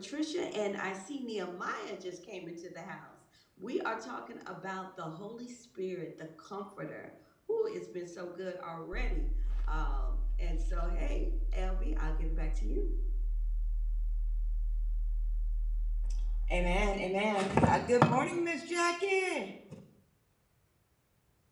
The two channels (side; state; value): both; identical; correlation 1.00